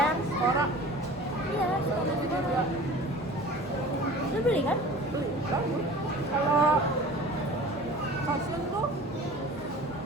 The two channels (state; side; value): normal; both; correlation 0.42